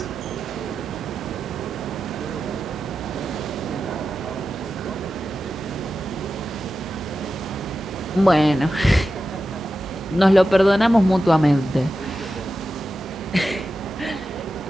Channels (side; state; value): both; normal; correlation 0.91